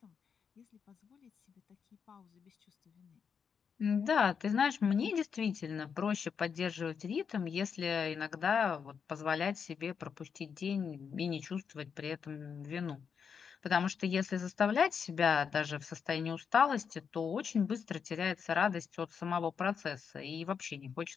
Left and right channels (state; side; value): quieter; right; 6.6 dB